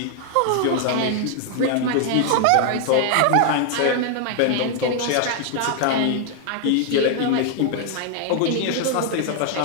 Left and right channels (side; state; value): both; different; correlation 0.00